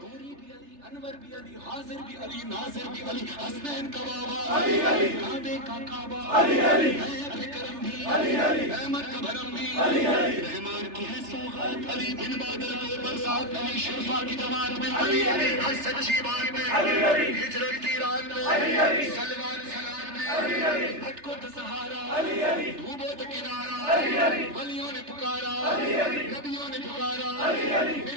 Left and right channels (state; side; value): late; left; 3.3 ms